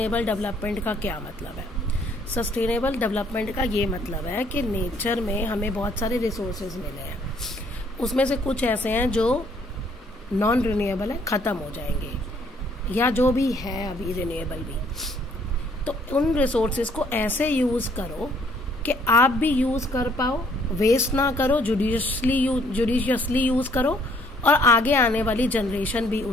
डेवलपमेंट का क्या मतलब है? सस्टेनेबल डेवलपमेंट का ये मतलब है कि नेचर में हमें बहुत सारे रिसोर्सेज मिले हैं, उसमें से कुछ ऐसे हैं जो नॉन रिन्यूएबल है, ख़त्म हो जाएंगे, या जो भी है अभी रिन्यूएबल भी, तो उन रिसोर्सेज को ऐसे यूज़ करो कि आप भी यूज़ कर पाओ, वेस्ट ना करो, जुडिशियसली यूज़ करो और आगे आने वाली जनरेशन भी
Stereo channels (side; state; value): both; normal; correlation 0.63